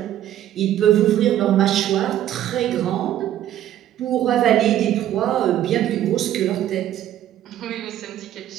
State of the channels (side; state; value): left; quieter; 12.0 dB